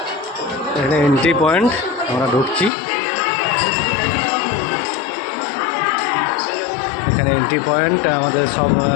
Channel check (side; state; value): right; drops out; at 2.7 s